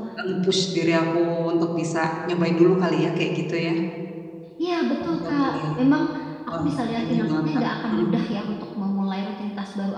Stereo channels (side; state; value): both; identical; correlation 1.00